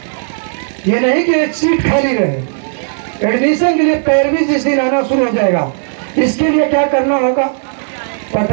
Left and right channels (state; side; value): silent; left; 70 dB below the other